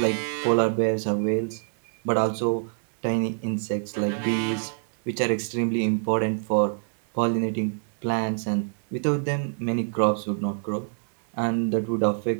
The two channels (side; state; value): left; silent; digital silence